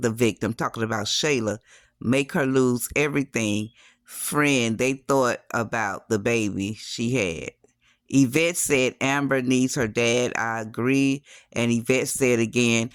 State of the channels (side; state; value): both; identical; correlation 1.00